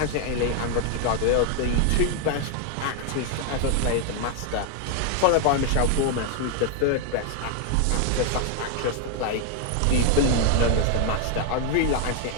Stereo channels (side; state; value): both; different; correlation 0.00